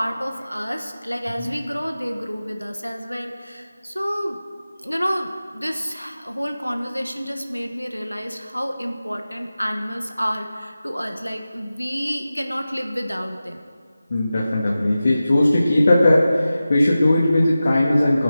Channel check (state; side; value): inverted; both; correlation -0.95